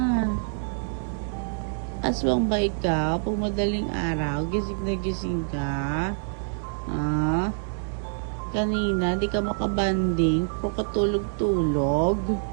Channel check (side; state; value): left; silent; digital silence